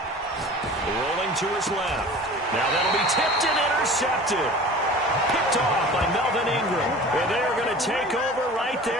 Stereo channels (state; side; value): normal; both; correlation 0.40